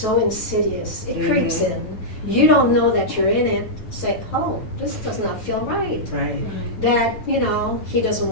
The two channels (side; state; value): right; late; 9.1 ms